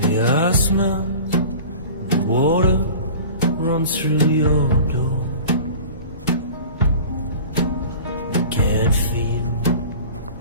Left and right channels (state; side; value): inverted; both; correlation -0.40